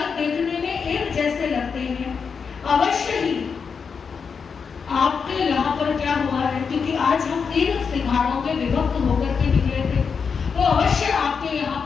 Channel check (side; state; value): right; quieter; 5.9 dB